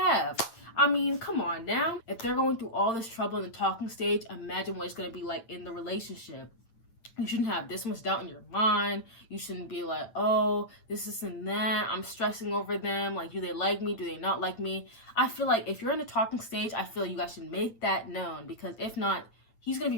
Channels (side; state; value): right; late; 8.9 ms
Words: I mean, come on now. If they're going through all this trouble in the talking stage, imagine what it's going to be like in the relationship. You shouldn't have this much doubt in your mind. You shouldn't be like, oh, this and that. I'm stressing over them. Like, do they like me? Do they not like me? I feel like if you're in the talking stage, I feel you guys should make that known, because if not, he's going to